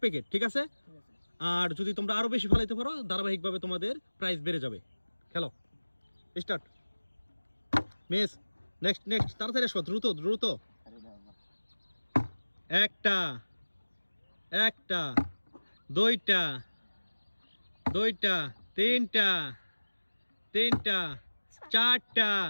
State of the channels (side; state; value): both; inverted; correlation -1.00